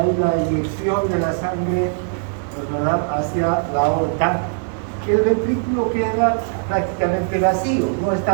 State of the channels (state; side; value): silent; left; digital silence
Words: la inyección de la sangre, ¿verdad?, hacia la aorta, el ventrículo queda prácticamente vacío. No